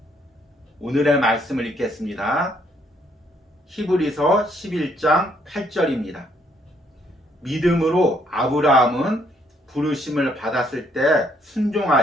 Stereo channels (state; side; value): normal; both; correlation 0.69